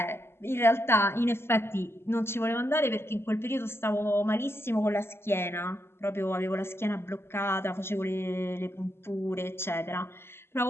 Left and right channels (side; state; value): right; late; 0.12 ms